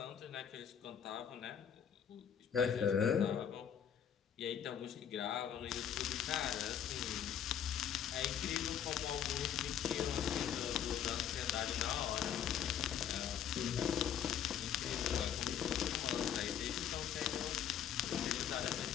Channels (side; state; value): right; quieter; 8.9 dB